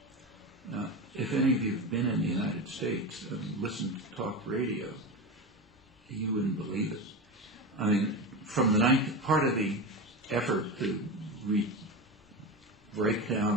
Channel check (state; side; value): normal; both; correlation 0.22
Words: Now, if any of you have been in the United States and listened to talk radio, you wouldn't believe it. From the part of the effort to break